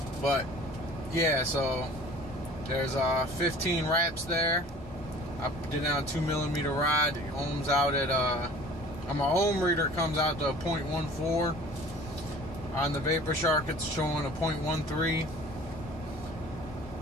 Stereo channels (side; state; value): both; normal; correlation 0.46